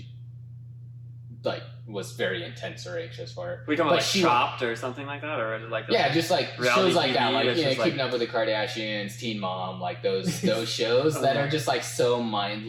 was very intense or anxious for. We talking But about like she- Chopped or something like that, or like just like reality shows like that, TV like that's just, Keeping Up with the Kardashians, Teen Mom, like those shows that are just like so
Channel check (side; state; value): both; identical; correlation 1.00